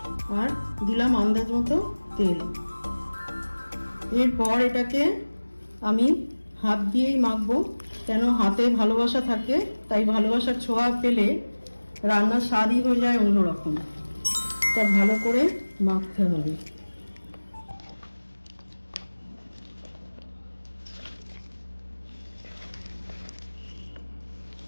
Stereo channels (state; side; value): inverted; both; correlation -1.00